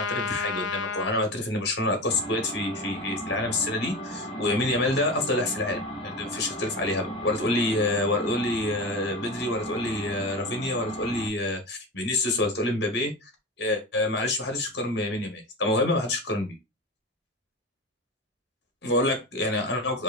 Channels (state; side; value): normal; both; correlation 0.26